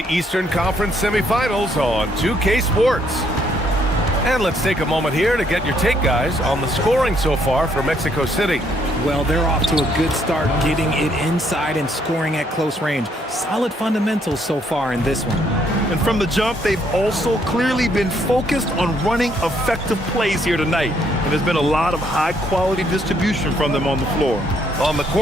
Eastern Conference semifinals on 2K Sports. And let's take a moment here to get your take, guys, on the scoring so far for Mexico City. Well, they're off to a good start getting it inside and scoring at close range. Solid fundamentals so far in this one. And from the jump, they've also clearly been focused on running effective plays here tonight. And there's been a lot of high-quality distribution from them on the floor. On the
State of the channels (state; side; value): normal; both; correlation 0.70